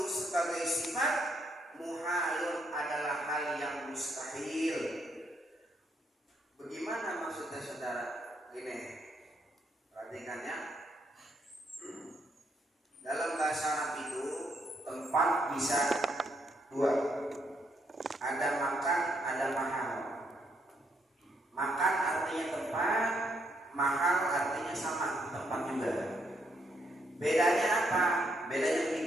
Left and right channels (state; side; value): normal; both; correlation 0.74